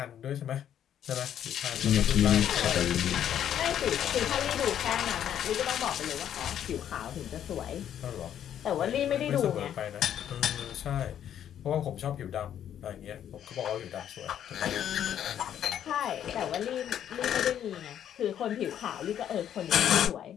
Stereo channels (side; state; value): right; quieter; 10.0 dB